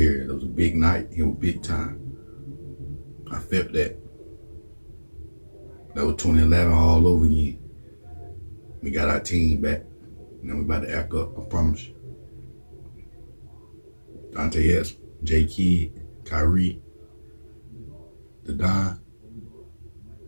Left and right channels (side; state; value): both; inverted; correlation -1.00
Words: It was a big night. It was big time. I felt that. That was 2011 all over again. We got our team back. Now we about to act up, I promise you. Dante Hess, J. Kidd, Kyrie, the Don,